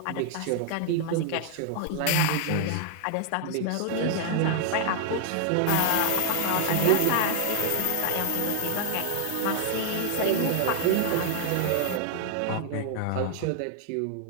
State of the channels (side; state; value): both; different; correlation 0.00